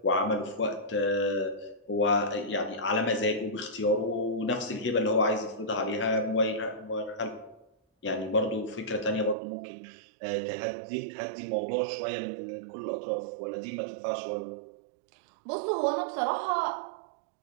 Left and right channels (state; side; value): drops out; left; at 9.3 s